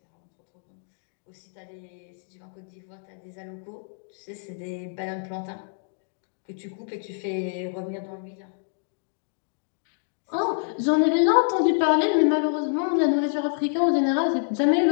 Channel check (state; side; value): silent; right; digital silence